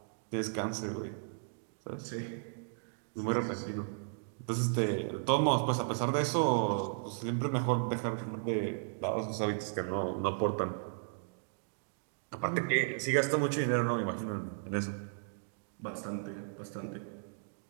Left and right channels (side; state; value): left; silent; digital silence